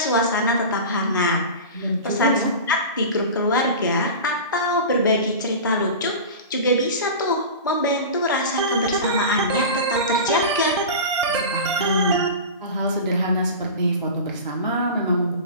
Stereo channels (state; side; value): inverted; both; correlation -0.31